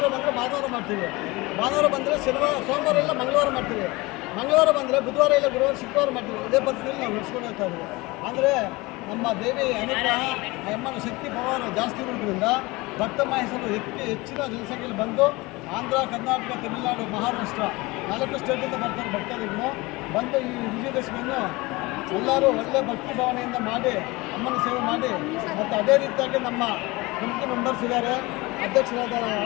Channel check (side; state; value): right; quieter; 22.8 dB